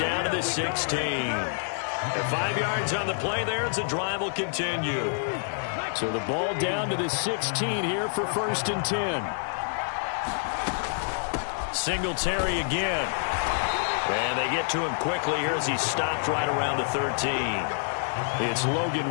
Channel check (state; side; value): silent; right; 56 dB below the other